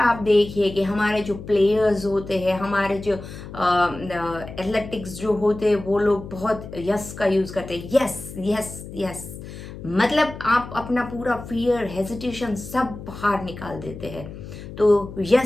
देखिए कि हमारे जो प्लेयर्स होते हैं, हमारे जो एथलेटिक्स जो होते हैं, वो लोग बहुत यस का यूज करते हैं। यस यस यस, मतलब आप अपना पूरा फियर, हेजिटेशन सब बाहर निकाल देते हैं। तो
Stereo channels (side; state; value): left; noise; hum, 12 dB below the sound